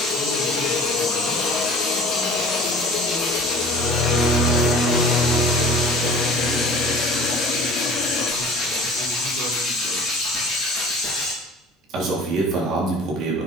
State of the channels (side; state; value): both; normal; correlation 0.44